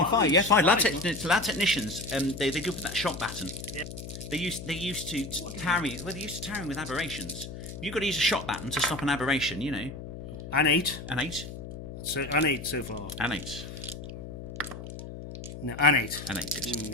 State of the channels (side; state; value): left; noise; hum, 10 dB below the sound